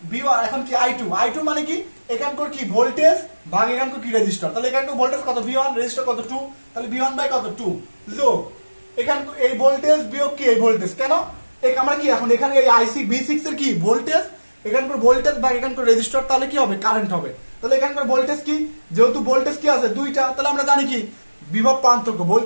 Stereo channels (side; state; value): both; inverted; correlation -1.00